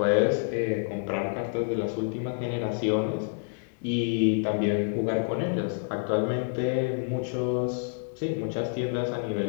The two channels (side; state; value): right; silent; digital silence